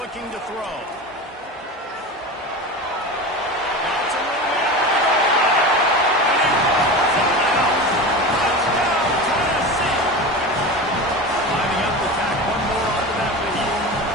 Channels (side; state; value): both; normal; correlation 0.28